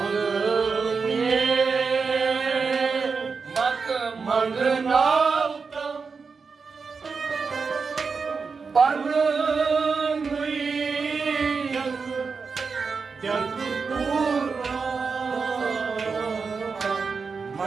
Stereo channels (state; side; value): quieter; left; 5.0 dB